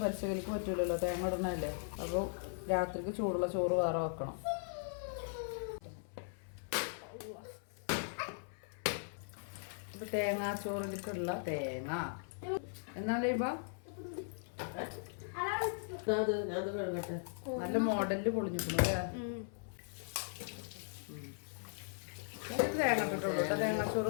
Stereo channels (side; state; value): right; silent; 52 dB below the other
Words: പച്ചക്കറിക്ക് പറ്റൂലല്ലോ, തേങ്ങ ഇടണല്ലേ. അപ്പോൾ രാത്രിക്ക് ചൂടുള്ള ചോറ് വേറെ വെക്കണം. അപ്പോൾ തേങ്ങാച്ചോറിലേക്കുള്ള തേങ്ങ എന്നാലേ ഇപ്പം നല്ല മോഡലിൽ പൊളിഞ്ഞിരിക്കുന്നു അല്ലേ. തേങ്ങ ഇട്ടിട്ടുള്ളൂ കേട്ടോ